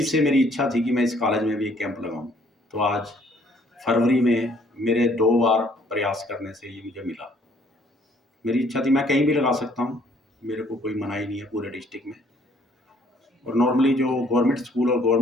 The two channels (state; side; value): normal; both; correlation 0.63